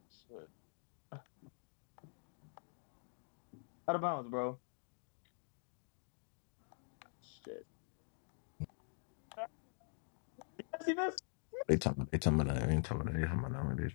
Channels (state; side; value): silent; right; digital silence